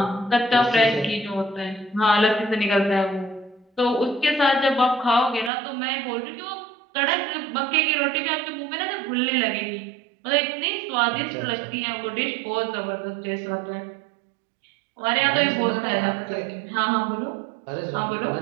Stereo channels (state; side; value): drops out; left; at 5.5 s